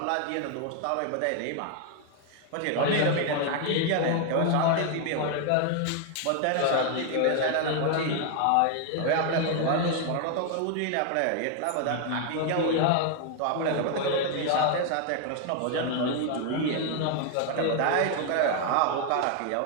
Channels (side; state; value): both; different; correlation 0.00